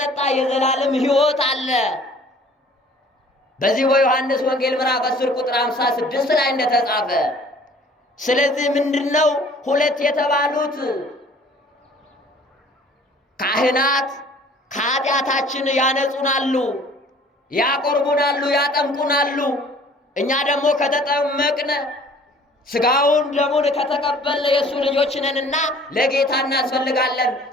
የዘላለም ሕይወት አለ። በዚህ በዮሐንስ ወንጌል ምዕራፍ 10 ቁጥር 56 ላይ እንደተጻፈ። ስለዚህ ምንድነው 2 የተባሉት ካህናት ከኃጢአታችን ያነጹናሉ፣ ያቆርቡናሉ፣ ያጠምቁናሉ። እኛ ደግሞ ከተጠመቅነ ሥጋውን ደሙን ከተቀበልን የእሱ ልጆች ነንና ለጌታ እናስፈልጋለን።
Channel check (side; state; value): both; normal; correlation 0.52